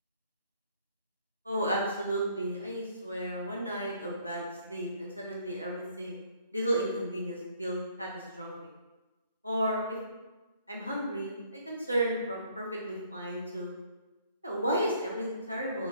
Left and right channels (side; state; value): both; inverted; correlation -0.63